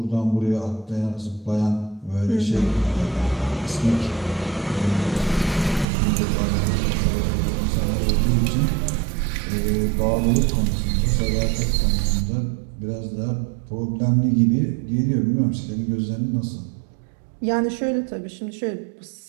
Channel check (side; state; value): left; drops out; at 5.9 s